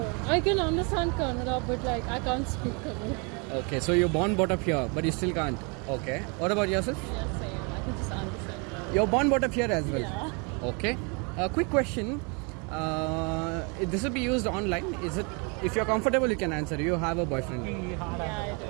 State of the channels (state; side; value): quieter; left; 32.8 dB